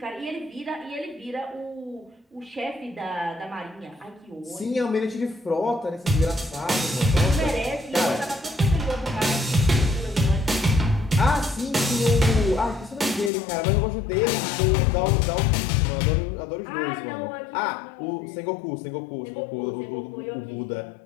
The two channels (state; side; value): drops out; right; at 13.3 s